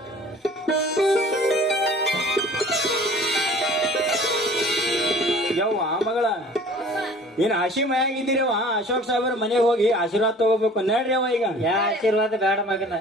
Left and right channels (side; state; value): both; normal; correlation 0.47